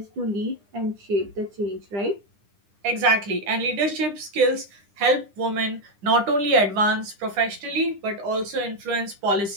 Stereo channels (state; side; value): late; left; 9.9 ms